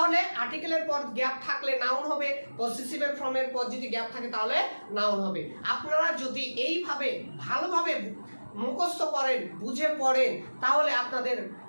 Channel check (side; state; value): both; inverted; correlation -1.00